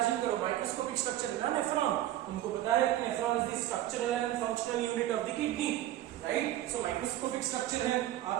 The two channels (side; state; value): left; quieter; 13.7 dB